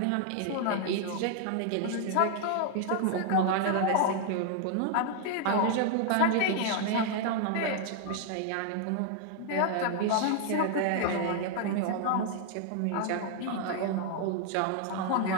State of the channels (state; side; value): different; both; correlation 0.00